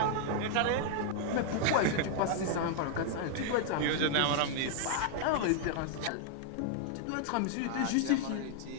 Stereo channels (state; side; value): different; both; correlation 0.00